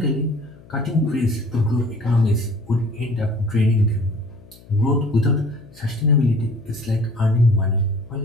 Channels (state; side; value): noise; left; hum, 24 dB below the sound